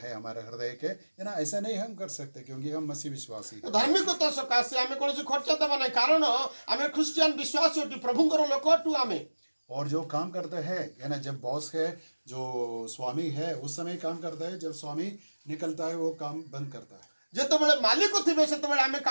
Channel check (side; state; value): both; inverted; correlation -1.00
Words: हमारे हृदय के, है ना, ऐसा नहीं हम कर सकते, क्योंकि हम मसीह विश्वासी। धार्मिकता सकाशे आमे कोनोसी खर्चा देबा नहीं, कारण आमे क्रिश्चियन विश्वासी होती, प्रभुंकर लोक होतु आमे। और जो काम करते हैं, है ना, जब बॉस है, जो स्वामी है, उस समय काम करता है, जब स्वामी निकलता है वो काम बंद करता है। जेतबेले मालिक थिबे सेतबेले आमे